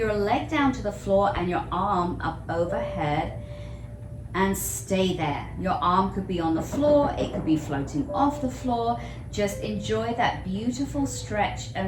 leg down to the floor and your arm up overhead and stay there. Your arm could be on the floor, it could be floating off the floor. Just enjoy that beautiful stretch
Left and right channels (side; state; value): both; identical; correlation 1.00